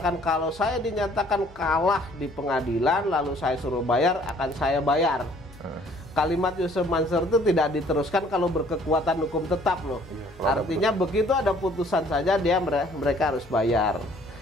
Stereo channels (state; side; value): noise; left; hum, 26 dB below the sound